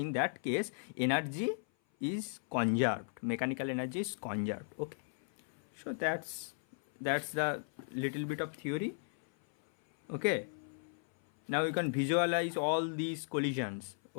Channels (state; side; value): silent; right; 54 dB below the other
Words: that case energy is conserved, mechanical energy is conserved, okay. So that's the little bit of theory, okay. Now you can visualize all these collisions,